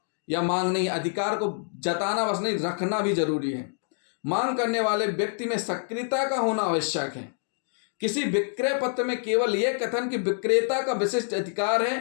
या मांग नहीं, अधिकार को जताना बस नहीं, रखना भी जरूरी है। मांग करने वाले व्यक्ति में सक्रियता का होना आवश्यक है। किसी विक्रय पत्र में केवल यह कथन कि विक्रेता का विशिष्ट अधिकार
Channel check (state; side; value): silent; right; digital silence